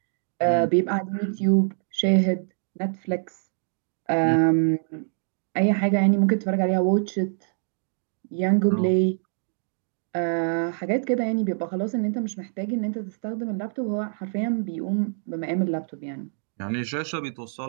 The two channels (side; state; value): left; silent; digital silence